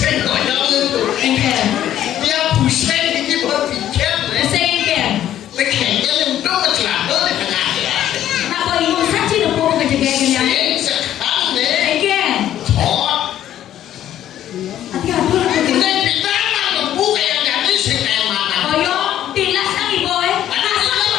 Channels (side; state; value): right; quieter; 11.7 dB